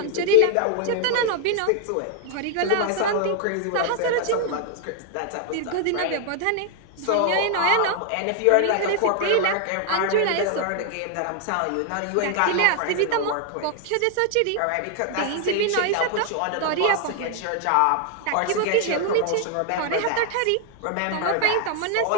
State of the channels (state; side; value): different; both; correlation 0.00